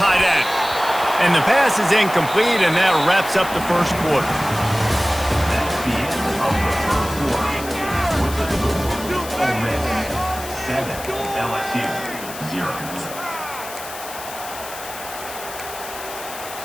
end. And the pass is incomplete, and that wraps up the first quarter.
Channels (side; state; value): left; noise; hiss, 12 dB below the sound